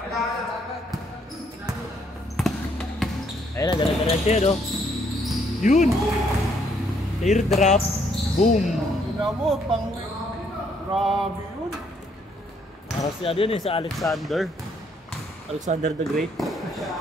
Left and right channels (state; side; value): normal; both; correlation 0.69